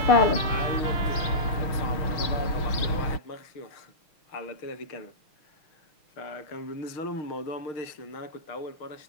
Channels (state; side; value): late; right; 6.3 ms